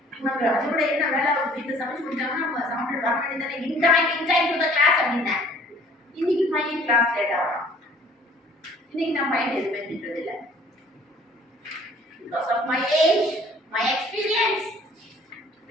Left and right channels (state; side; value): normal; both; correlation 0.54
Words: உனக்கு அதோட என்ன வேலை வீட்டு சமைச்சு கொடுத்தாங்கன்னா நம்ம சாப்பிட்டு வர வேண்டியதானே in time to the class அப்படின்னேன் இன்னைக்கு பையன் கிளாஸ் லேட்டா வரான் இன்னைக்கு நான் பையன் எதுவுமே திட்டுறது இல்லை because of my age my experience